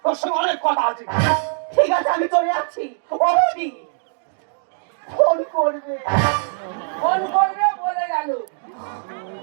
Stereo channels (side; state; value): left; silent; digital silence